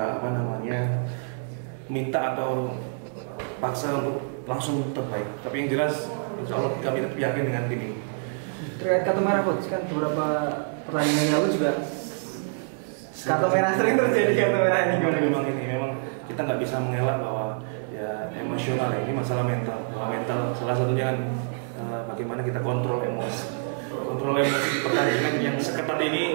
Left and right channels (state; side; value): silent; left; 61 dB below the other